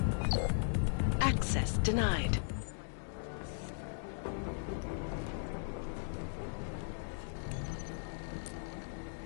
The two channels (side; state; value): right; silent; digital silence